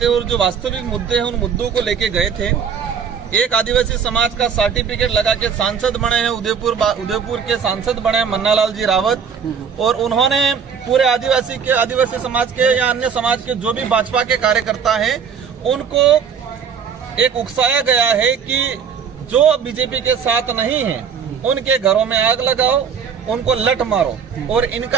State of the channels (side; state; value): left; quieter; 6.8 dB